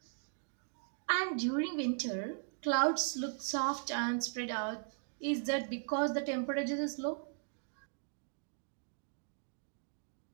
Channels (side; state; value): left; silent; digital silence